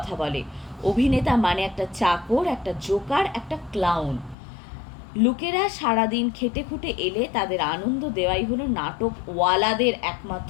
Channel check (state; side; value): drops out; right; at 4.4 s